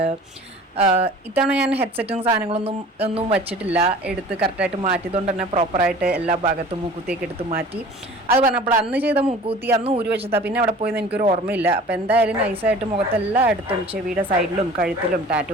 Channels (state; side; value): normal; both; correlation 0.44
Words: ഇത്തവണ ഞാൻ ഹെഡ്സെറ്റും സാധനങ്ങളൊന്നും വച്ചിട്ടില്ല, എടുത്ത് കറക്റ്റായിട്ട് മാറ്റിയതുകൊണ്ട് തന്നെ പ്രോപ്പറായിട്ട് എല്ലാ ഭാഗത്തും മൂക്കുത്തിയൊക്കെ എടുത്ത് മാറ്റി. അത് പറഞ്ഞപ്പോൾ അന്ന് ചെയ്ത മൂക്കുത്തി അന്ന് ഊരി വെച്ചതാ, പിന്നെ അവിടെ പോയെന്ന് എനിക്കൊരു ഓർമ്മയില്ല. അപ്പോൾ എന്തായാലും നൈസായിട്ട് മുഖത്തെല്ലാം എടുത്തും ചെവിയുടെ സൈഡിലും കഴുത്തിലും